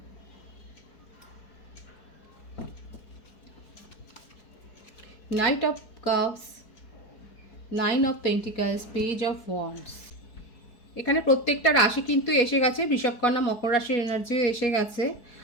Night of cups, 9 of pentacles, page of wands. এখানে প্রত্যেকটা রাশি কিন্তু এসে গেছে, বৃষভকন্যা মকর রাশির এনার্জিও এসে গেছে।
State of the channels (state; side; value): late; right; 4.7 ms